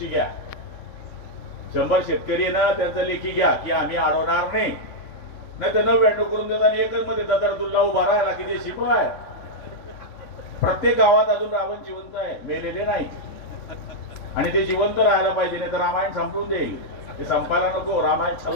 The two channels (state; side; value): late; right; 3.5 ms